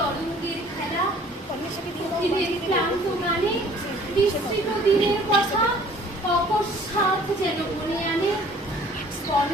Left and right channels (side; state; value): both; normal; correlation 0.53